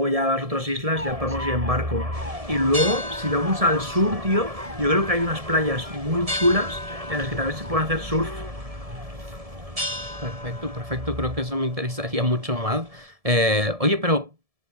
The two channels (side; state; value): left; late; 1.7 ms